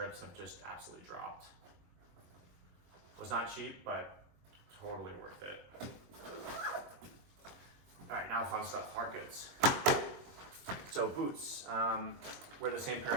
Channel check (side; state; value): left; late; 21 ms